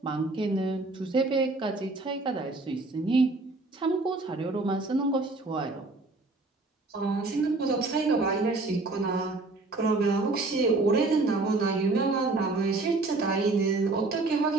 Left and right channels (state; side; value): quieter; left; 3.4 dB